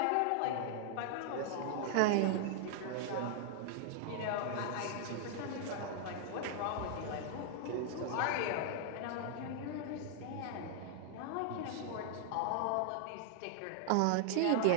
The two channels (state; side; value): different; both; correlation 0.00